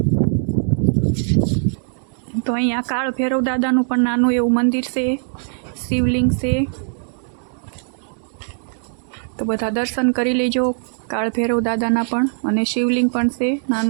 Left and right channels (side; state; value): left; silent; digital silence